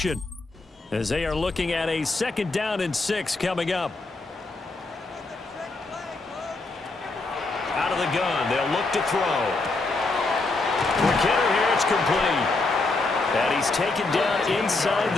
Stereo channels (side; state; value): right; quieter; 3.4 dB